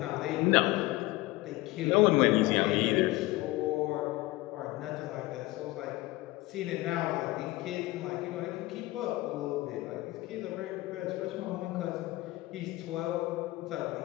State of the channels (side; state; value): right; quieter; 19.2 dB